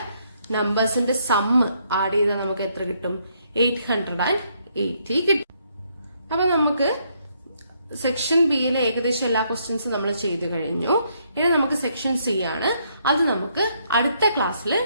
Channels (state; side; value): inverted; both; correlation -0.72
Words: നമ്പേഴ്സിന്റെ സമ്മ് ആഡ് ചെയ്താൽ നമുക്ക് എത്ര കിട്ടും? 880 കിട്ടും. അപ്പൊ നമുക്ക് സെക്ഷൻ ബിയിലെ ഏകദേശം എല്ലാ ക്വസ്റ്റ്യൻസും നമ്മൾ ചെയ്തു കഴിഞ്ഞു. ഇനി നമുക്ക് സെക്ഷൻ സി ആണ്. അത് നമുക്ക് അടുത്ത ക്ലാസ്സിൽ